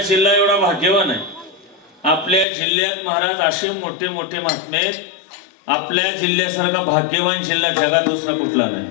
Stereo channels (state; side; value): drops out; right; at 2.5 s